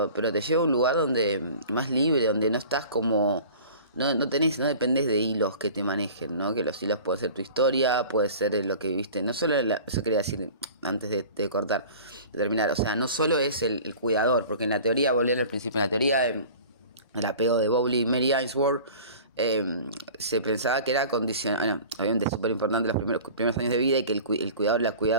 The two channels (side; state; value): both; inverted; correlation -0.42